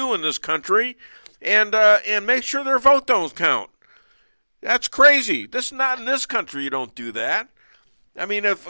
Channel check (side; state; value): both; inverted; correlation -1.00